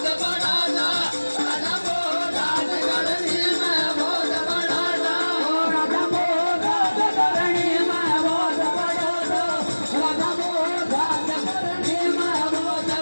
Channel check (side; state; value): both; inverted; correlation -1.00